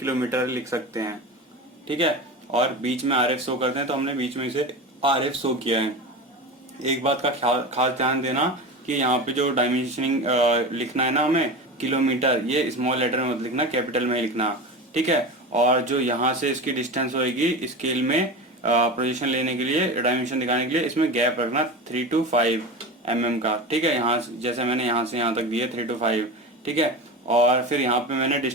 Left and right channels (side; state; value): both; normal; correlation 0.27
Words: लिख सकते हैं, ठीक है। और बीच में आरएफ शो करते हैं तो हमने बीच में इसे आरएफ शो किया है। एक बात का खास ध्यान देना कि यहाँ पे जो डायमेंशनिंग लिखना है ना हमें किलोमीटर, ये स्मॉल लेटर में मत लिखना, कैपिटल में ही लिखना, ठीक है। और जो यहाँ से इसकी डिस्टेंस होगी स्केल में पोजीशन लेने के लिए, डायमेंशन दिखाने के लिए, इसमें गैप रखना 3 to 5 mm का, ठीक है। यहाँ जैसे मैंने यहाँ से यहाँ तक दिए 3 to 5, ठीक है। और फिर यहाँ पे मैंने